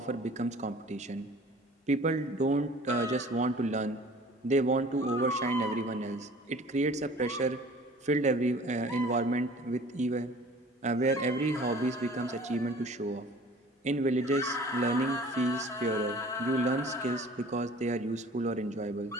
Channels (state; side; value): normal; both; correlation 0.47